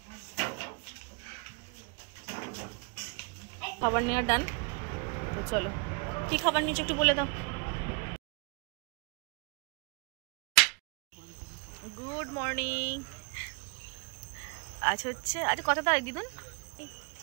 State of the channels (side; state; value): left; quieter; 33.5 dB